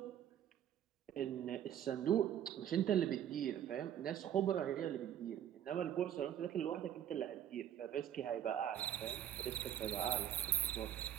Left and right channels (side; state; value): left; quieter; 10.4 dB